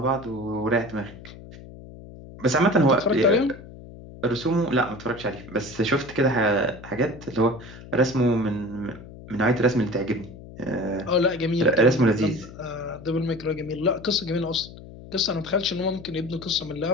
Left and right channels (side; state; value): left; noise; hum, 16 dB below the sound